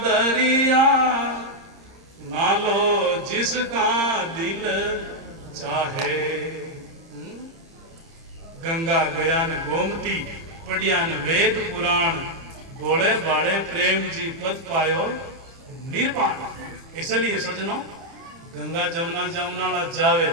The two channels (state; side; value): late; left; 30 ms